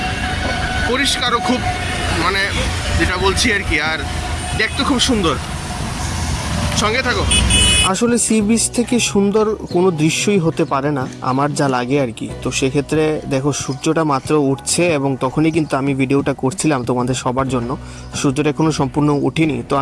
পরিষ্কারও খুব, মানে যেটা বলছি আর কি, আর দেখতে খুব সুন্দর। সঙ্গে থাকো। আসলে সি বিচ থেকে সুন্দর কোনো দৃশ্যই হতে পারে না, আমার যা লাগে আর কি। তো সেক্ষেত্রে দেখো সূর্যটা মাত্র উঠছে এবং তখনই কিন্তু আমি ভিডিওটা করছিলাম তোমাদের সবার জন্য। সূর্যটা এখনও সম্পূর্ণ উঠেনি। তো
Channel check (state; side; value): identical; both; correlation 1.00